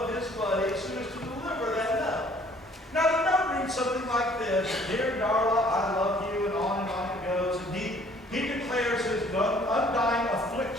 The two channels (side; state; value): both; normal; correlation 0.57